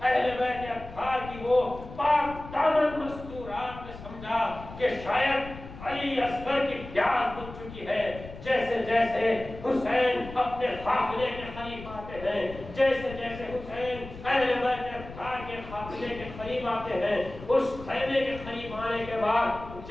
اہل بیت اطہار کی وہ پاک دامن مستورات نے سمجھا کہ شاید علی اصغر کی پیاس بجھ چکی ہے. جیسے جیسے حسین اپنے قافلے کے قریب آتے ہیں, جیسے جیسے حسین اہل بیت اطہار کے قافلے کے قریب آتے ہیں, اس خیمے کے قریب آنے کے بعد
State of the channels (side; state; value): left; noise; rumble, 14 dB below the sound